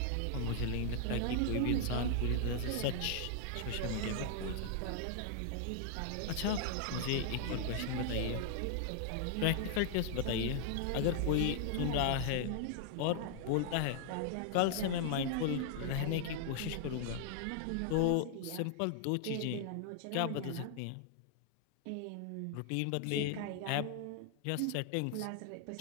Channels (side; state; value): both; different; correlation -0.01